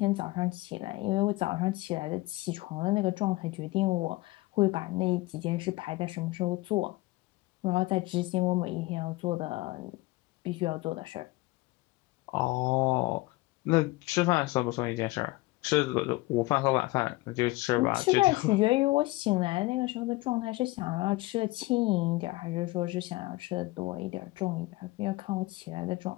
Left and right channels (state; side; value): quieter; right; 20.9 dB